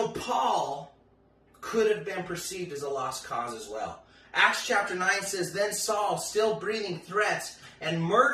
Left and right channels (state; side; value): identical; both; correlation 1.00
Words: Paul could have been perceived as a lost cause as well. Acts chapter 9 says, Then Saul, still breathing threats and